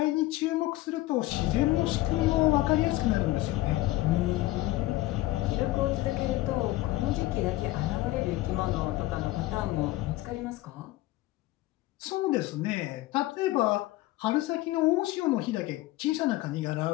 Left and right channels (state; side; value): quieter; right; 17.5 dB